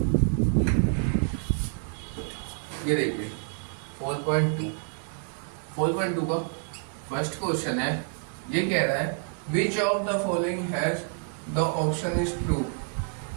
ये देखिए 4.2 का फर्स्ट क्वेश्चन है। ये कह रहा है which of the following has the option is true,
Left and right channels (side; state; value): left; silent; 59 dB below the other